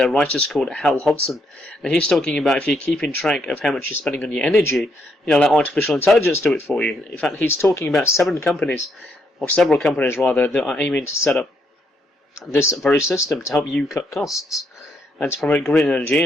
writers called Hal Hodson. And he's talking about if you're keeping track of how much you're spending on your energy, let artificial intelligence do it for you. In fact, he's talking about several companies rather, that are aiming to set up this very system to help you cut costs and to promote green energy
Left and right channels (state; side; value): normal; both; correlation 0.75